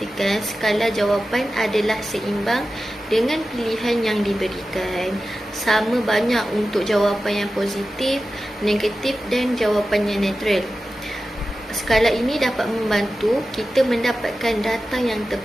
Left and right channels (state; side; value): normal; both; correlation 0.94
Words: skala jawapan adalah seimbang dengan pilihan yang diberikan. Sama banyak untuk jawapan yang positif, negatif dan jawapan yang netral. Skala ini dapat membantu kita mendapatkan data yang